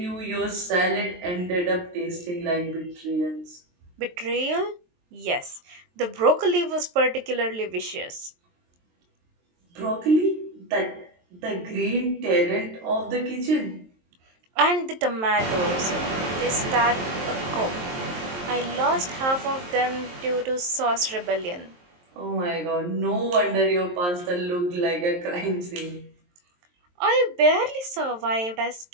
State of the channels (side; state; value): left; late; 23 ms